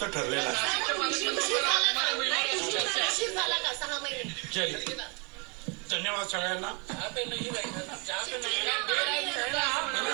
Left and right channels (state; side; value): quieter; left; 32.2 dB